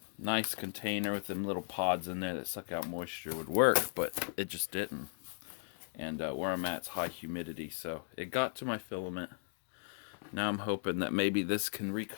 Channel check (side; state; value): right; silent; digital silence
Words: nice container with them little pods in there that suck out moisture would work, but it just didn't. And where I'm at is high humidity, so it got to my filament. Now I'm hoping that maybe this can